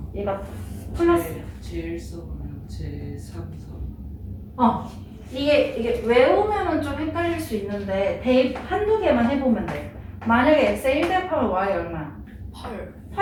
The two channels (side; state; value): both; identical; correlation 1.00